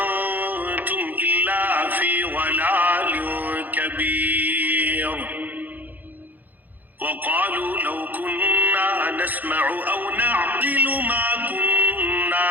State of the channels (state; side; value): late; left; 0.084 ms